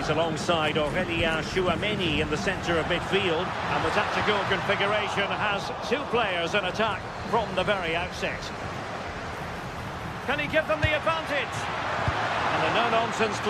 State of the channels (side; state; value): both; identical; correlation 1.00